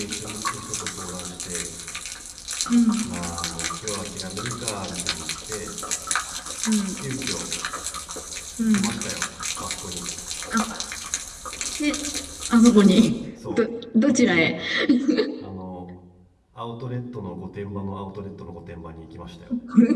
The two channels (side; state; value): both; identical; correlation 1.00